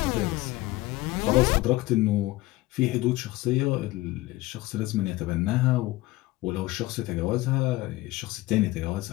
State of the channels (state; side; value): quieter; right; 18.9 dB